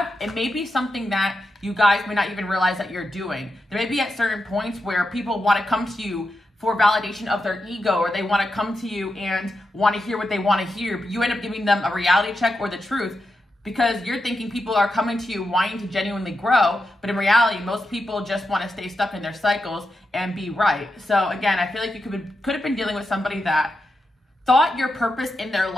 it may be something that you guys may not even realize that you're doing. There may be at certain points where people want to come to you for validation of their ego, or they want to come to you and want to hear what they want to hear, but you end up giving them a reality check or the truth because you're thinking people are coming to you wanting to genuinely grow, but in reality, most people just want to stay stuck in their cycles and be right. So again, I feel like you could have been dealing with somebody that thought your purpose in their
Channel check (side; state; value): both; normal; correlation 0.87